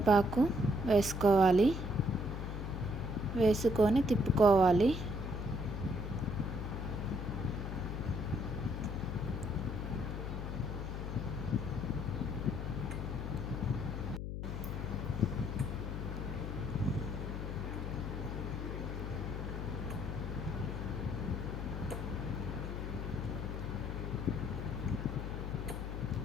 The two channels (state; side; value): noise; left; hum, 4 dB below the sound